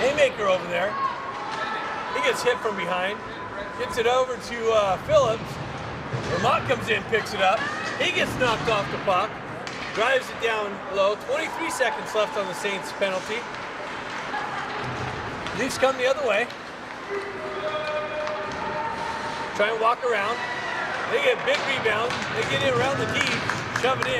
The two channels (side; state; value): both; identical; correlation 1.00